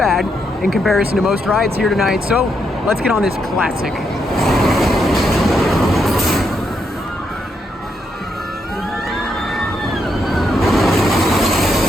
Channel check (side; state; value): both; normal; correlation 0.79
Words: in comparison to most rides here tonight, so let's get on this classic.